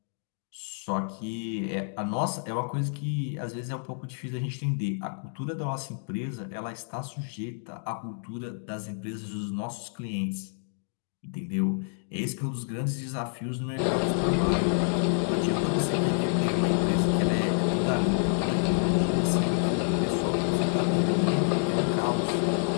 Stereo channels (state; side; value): silent; right; 59 dB below the other